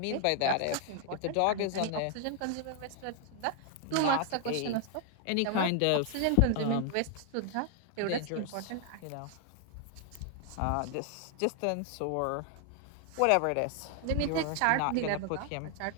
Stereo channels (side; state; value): both; different; correlation 0.00